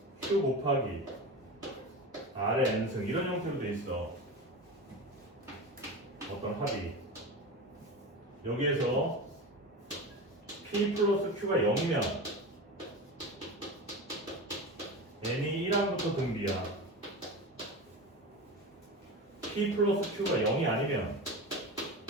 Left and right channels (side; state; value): both; normal; correlation 0.27